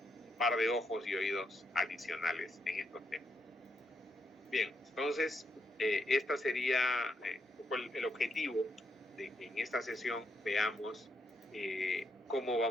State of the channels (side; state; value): both; normal; correlation 0.80